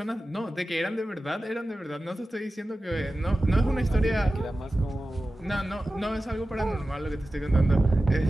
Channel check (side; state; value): both; normal; correlation 0.95